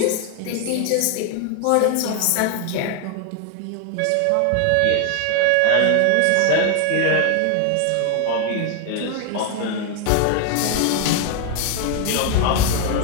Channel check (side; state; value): both; different; correlation 0.00